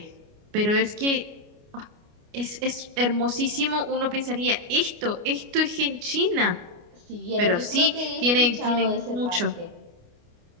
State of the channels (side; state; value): left; late; 29 ms